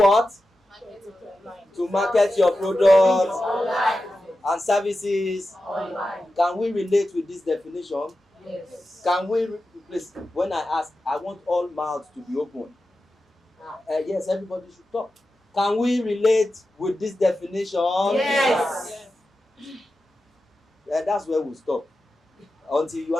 To market your products Online. and services. Online. Can we relate with this definition? Yes. Can we, please, when I ask, I want all mouths to be open. Yes, everybody should talk. Can we relate with this definition? Yes. That's where we'll stop. Until you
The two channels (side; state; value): both; normal; correlation 0.92